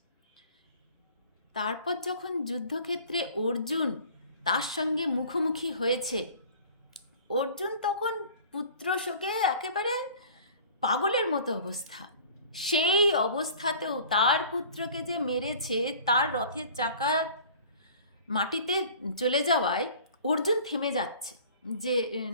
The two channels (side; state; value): both; inverted; correlation -0.47